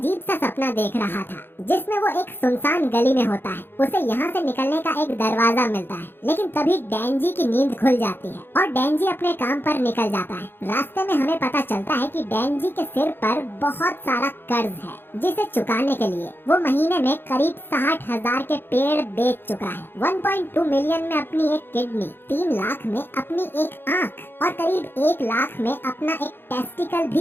सा सपना देख रहा था, जिसमें वो एक सुनसान गली में होता है। उसे यहाँ से निकलने का एक दरवाजा मिलता है, लेकिन तभी डेंजी की नींद खुल जाती है और डेंजी अपने काम पर निकल जाता है। रास्ते में हमें पता चलता है कि डेंजी के सिर पर बहुत सारा कर्ज है, जिसे चुकाने के लिए वो महीने में करीब 60,000 के पेड़ बेच चुका है। 1.2 मिलियन में अपनी एक किडनी, 3 लाख में अपनी एक आँख और करीब 1 लाख में अपना एक टेस्टिकल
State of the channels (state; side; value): late; right; 0.10 ms